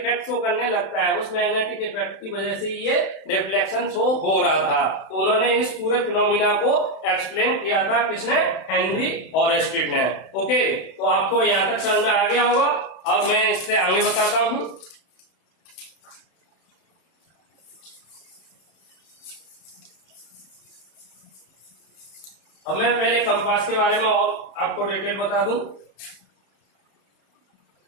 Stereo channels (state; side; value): late; right; 31 ms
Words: शो करने लगता है। उस मैग्नेटिक इफेक्ट की वजह से ये डिफ्लेक्शन शो हो रहा था। तो उन्होंने इस पूरे फिनोमिना को एक्सप्लेन किया था, किसने, हेनरी ओरेस्टेड ने। ओके, तो आपको यहां तक समझ में आ गया होगा। अब मैं इससे आगे बताता हूं। अब मैं पहले कंपास के बारे में और आपको डिटेल बता दूं।